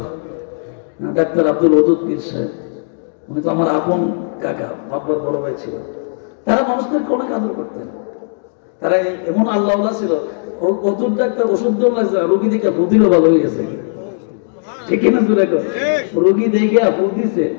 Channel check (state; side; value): silent; right; digital silence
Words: ডাক্তার আব্দুল ওদুদ পীর সাহেব, উনি তো আমার আপন কাকা, বাবার বড় ভাই ছিল। তারা মানুষদেরকে অনেক আদর করতেন, তারা এমন আল্লাহ ছিল। ওদুদ ডাক্তার ওষুধ দেওয়া লাগছে, রোগী দেখে ফুদিলও ভালো হয়ে গেছে, ঠিক কিনা? রোগী দেখে ফুদ দিছে,